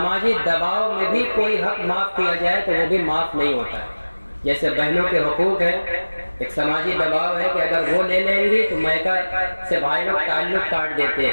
دباؤ میں بھی کوئی حق معاف کیا جائے تو وہ بھی معاف نہیں ہوتا ہے۔ جیسے بہنوں کے حقوق ہیں، ایک سماجی دباؤ ہے کہ اگر وہ لے لیں گی تو میکا سے بھائی لوگ تعلق کاٹ دیتے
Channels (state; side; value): inverted; both; correlation -1.00